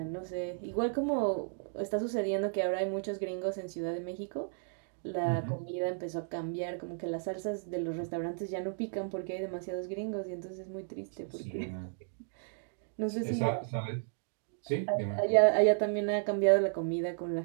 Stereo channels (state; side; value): silent; left; digital silence